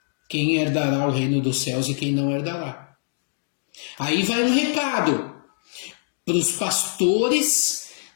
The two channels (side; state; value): right; silent; 63 dB below the other